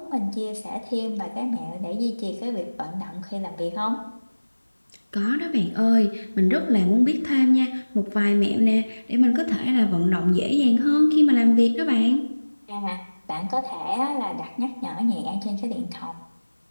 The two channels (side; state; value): both; inverted; correlation -1.00